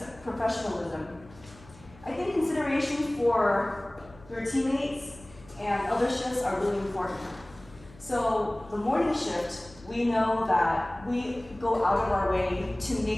professionalism, I think consideration for your teammates and other shifts are really important. So the morning shift, we know that we go out of our way to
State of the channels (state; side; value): noise; left; hum, 23 dB below the sound